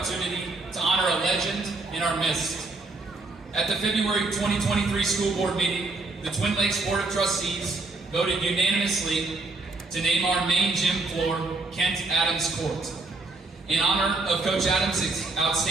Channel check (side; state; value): left; quieter; 3.4 dB